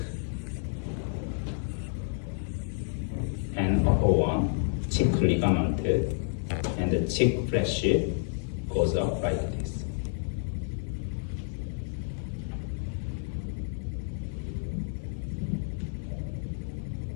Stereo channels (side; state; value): right; silent; 57 dB below the other